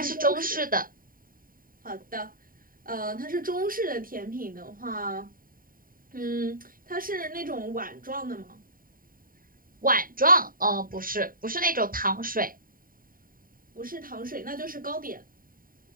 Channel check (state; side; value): late; left; 0.41 ms